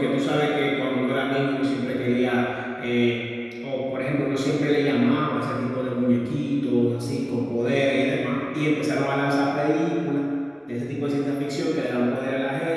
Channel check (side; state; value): both; identical; correlation 1.00